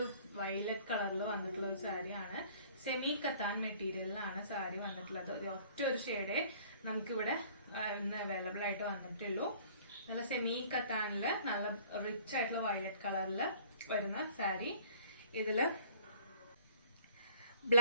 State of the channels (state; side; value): inverted; both; correlation -0.52